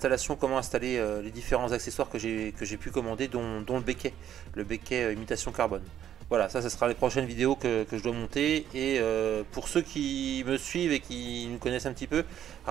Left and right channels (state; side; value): quieter; left; 10.5 dB